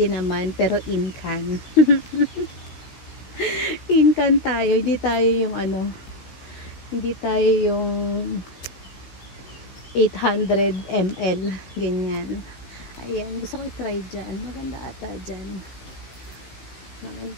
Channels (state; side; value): late; right; 15 ms